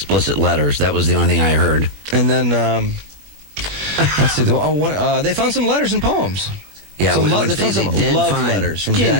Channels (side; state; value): left; late; 21 ms